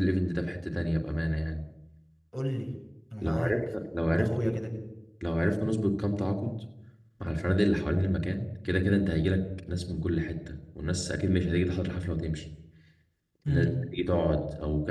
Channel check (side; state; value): both; identical; correlation 1.00